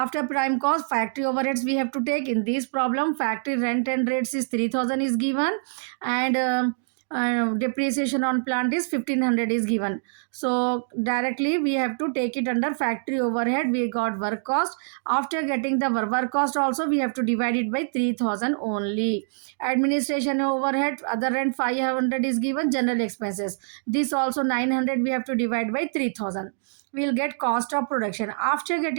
prime cost factory overheads we have to take. In this problem factory rent and rates is 3000 is given, and depreciation on plant is 1500 is given. So directly we have to take it under factory overhead. We got work cost. After getting the work cost also we have to divide it by 3000 only. Administration overhead, other rent 500 is given, general expenses, this also 900 we have to divide by 3000. We'll get cost of production. After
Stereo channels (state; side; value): silent; left; digital silence